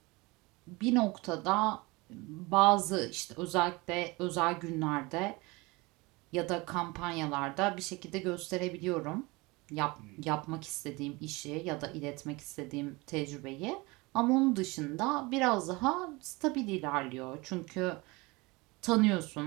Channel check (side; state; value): left; quieter; 24.2 dB